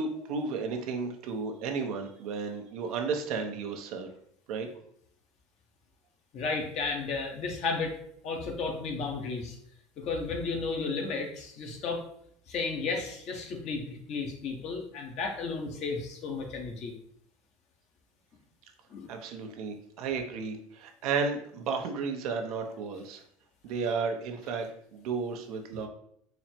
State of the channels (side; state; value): both; normal; correlation 0.33